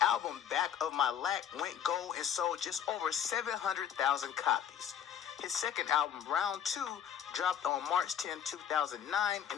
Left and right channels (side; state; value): right; quieter; 9.2 dB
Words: album, Back of My Lack, went gold and sold just over 700,000 copies. His second album, Round 2, dropped on March 10, 2009, and